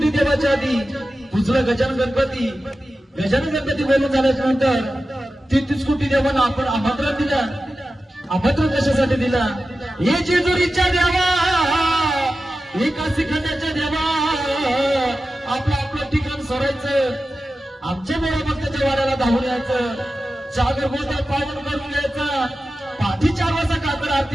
देवाच्या आधी पुजलं गजानन गणपती. गजानन गणपती बोलून झाल्याच्या नंतर 33 कोटी देवांना आपण आमंत्रण दिलं. आमंत्रण कशासाठी दिला? हे जेजुरीच्या देवा, हे काशी खंडाच्या देवा, आपलं आपलं ठिकाण सोडायचं, आमच्या मोठ्या भक्ताच्या वाड्याला धावून यायचं, जागर गोत्यात पावन करून घ्यायचं. पाठी 4 वाजता कातर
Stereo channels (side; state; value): both; normal; correlation 0.93